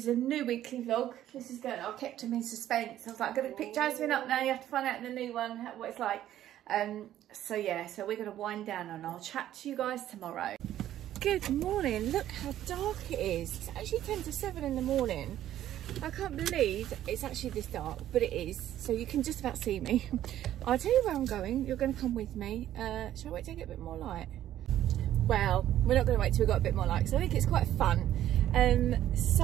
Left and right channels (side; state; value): left; quieter; 12.3 dB